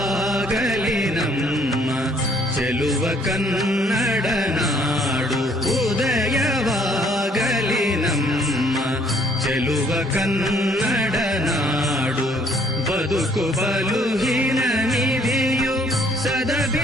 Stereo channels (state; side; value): normal; both; correlation 0.63